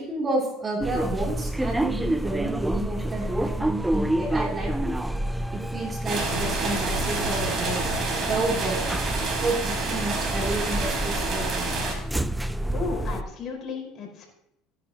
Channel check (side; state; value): both; normal; correlation 0.72